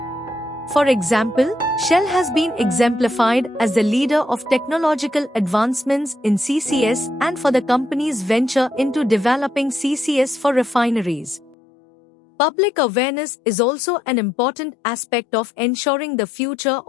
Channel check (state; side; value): drops out; right; at 11.6 s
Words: For example, Shell has been exemplified as the leader of technological advancements in CCS and for the company's venture into developing CCS for refineries. Public awareness is also an important aspect of ensuring the future